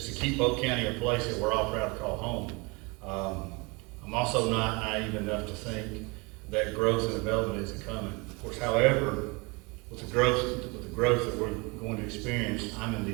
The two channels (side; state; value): left; quieter; 27.9 dB